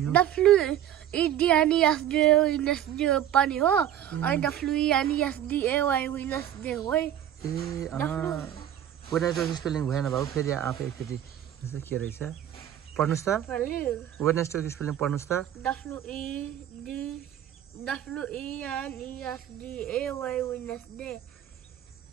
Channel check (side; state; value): left; quieter; 10.9 dB